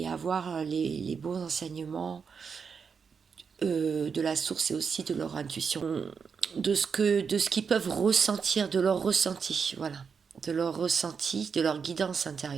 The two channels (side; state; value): left; quieter; 6.0 dB